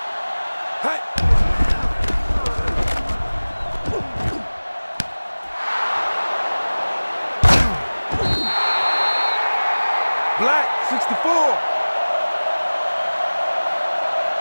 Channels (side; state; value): both; inverted; correlation -1.00